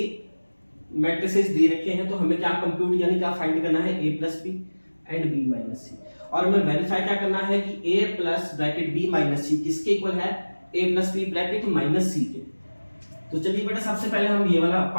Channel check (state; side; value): inverted; both; correlation -1.00